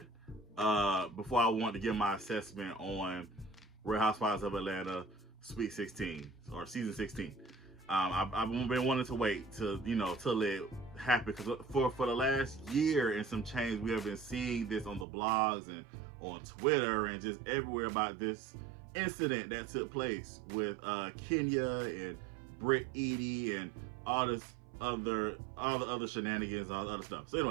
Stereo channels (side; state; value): left; drops out; at 15.1 s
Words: before I want to give my assessment on Real Housewives of Atlanta Sweet 16 or Season 16. I've been wanting to wait till it happened, because for the last year and some change, we have been seeing this on the blogs and on Twitter and just everywhere about this incident that took place with Kenya and Britt Edie and all the other shenanigans, all the other stuff. So